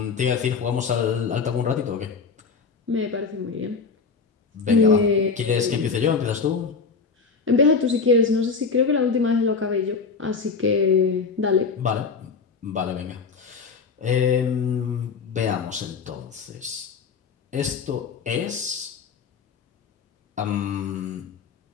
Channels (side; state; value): right; quieter; 5.2 dB